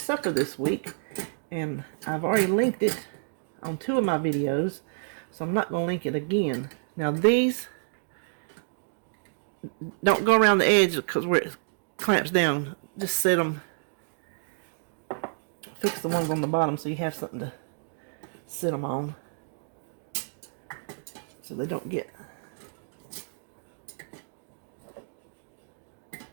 this week. And I've already linked it on 2 of my videos, so I'm not going to link it again. Now these, don't go around the edge because where it clamps down. Just set them, fix the ones on the bottom so you have something to sit them on, so they don't get.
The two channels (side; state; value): left; silent; digital silence